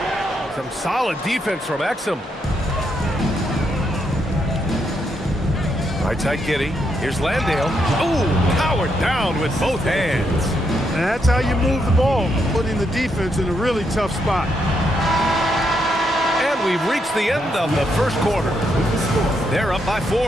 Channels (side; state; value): both; normal; correlation 0.79